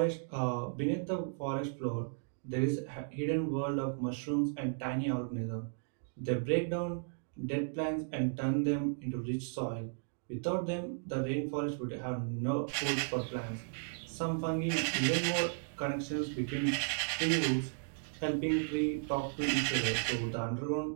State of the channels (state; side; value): silent; left; digital silence